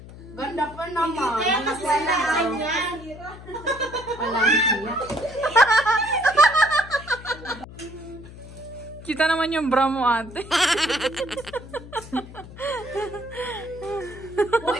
ganda pa naman. Kaya mas wala yan. Walang hiya. Kita naman yung bra mo, ate.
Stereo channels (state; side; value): noise; left; hum, 16 dB below the sound